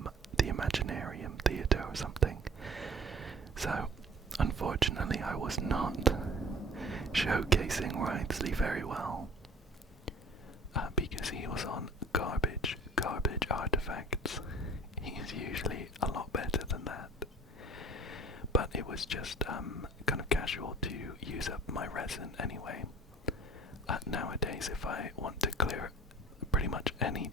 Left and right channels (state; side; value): normal; both; correlation 0.47